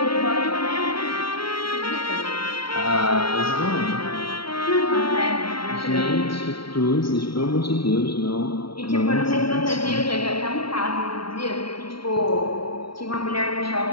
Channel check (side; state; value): right; late; 0.74 ms